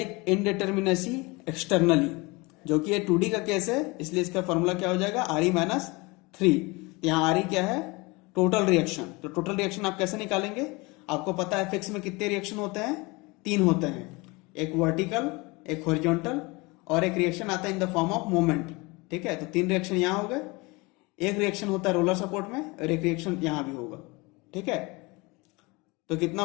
इनडिटर्मिनेसी एक्सटर्नली, जो कि ये 2D का केस है, इसलिए इसका फॉर्मूला क्या हो जाएगा RE-3। यहाँ RE क्या है, टोटल रिएक्शन। तो टोटल रिएक्शन आप कैसे निकालेंगे, आपको पता है फिक्स में कितने रिएक्शन होते हैं, 3 होते हैं, एक वर्टिकल, एक हॉरिजॉन्टल और एक रिएक्शन आता है in the form of moment. ठीक है, तो 3 रिएक्शन यहाँ हो गए, एक रिएक्शन होता है रोलर सपोर्ट में और एक रिएक्शन यहां भी होगा। ठीक है, तो कितना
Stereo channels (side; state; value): right; quieter; 25.2 dB